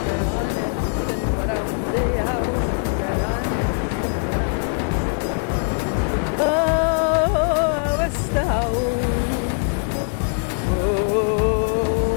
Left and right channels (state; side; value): silent; right; 61 dB below the other